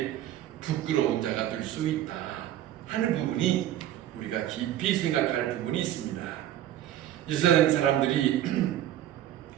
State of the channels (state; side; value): quieter; left; 12.1 dB